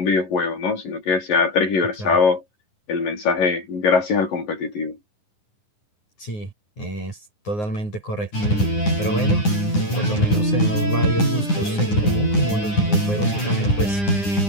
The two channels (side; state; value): right; late; 9.9 ms